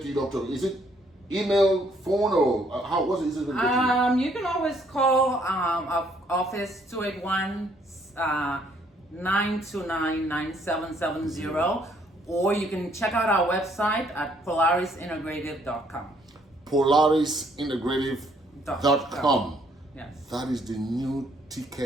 to your doctor? Is it email, phone, or how? What's the easiest way to get you? You can always call our office 281 929-9770, or you can check out our website at polarisintegrative.com. polarisintegrative.com. Yes. That is the new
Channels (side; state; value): both; normal; correlation 0.66